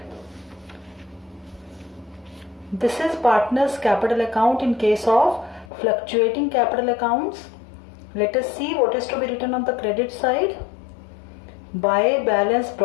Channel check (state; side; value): drops out; right; at 5.7 s